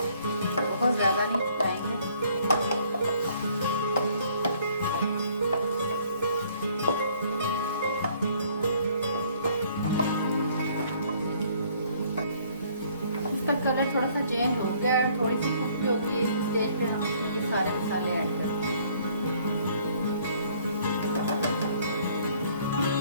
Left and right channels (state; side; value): inverted; both; correlation -0.61